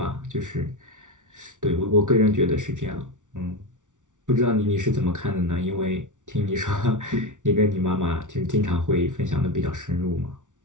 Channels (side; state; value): left; late; 0.87 ms